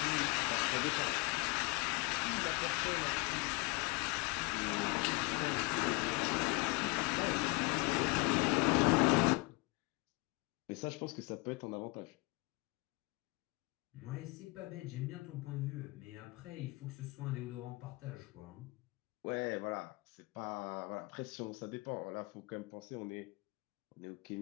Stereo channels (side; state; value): right; quieter; 25.4 dB